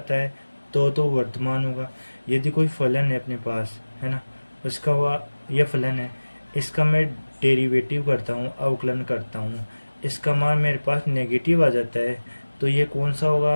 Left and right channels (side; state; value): both; inverted; correlation -1.00